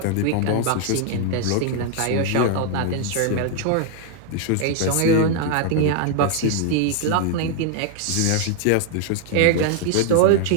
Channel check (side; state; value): both; different; correlation 0.00